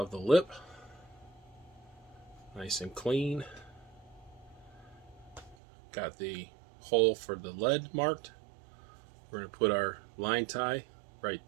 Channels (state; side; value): drops out; left; at 5.6 s